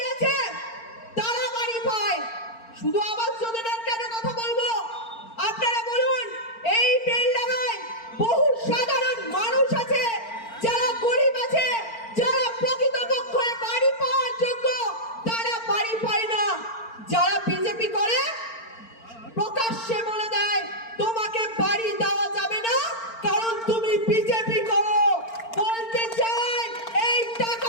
আছে তারা বাড়ি পায়। শুধু আবাস যোজনার কেন কথা বলবো? আপনারা বলুন, এই বেলডাঙ্গায় বহু সাধারণ মানুষ আছে যারা গরিব আছে, যারা প্রকৃতপক্ষে বাড়ি পাওয়ার যোগ্য, তারা বাড়ি পায় না। যারা বিজেপি করে প্রকাশ্যে বলে দেয় তোমাকে বাড়ি দেওয়া যাবে না কারণ তুমি বিজেপি করো। বলতে চাই এই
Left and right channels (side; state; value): right; late; 4.4 ms